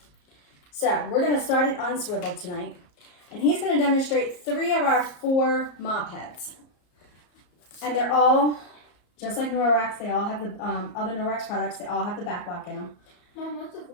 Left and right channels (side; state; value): right; late; 34 ms